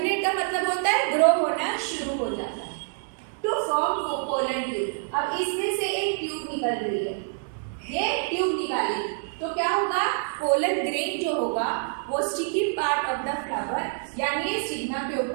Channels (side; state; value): left; silent; 60 dB below the other